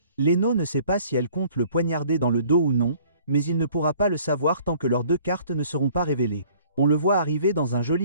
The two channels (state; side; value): inverted; both; correlation -0.55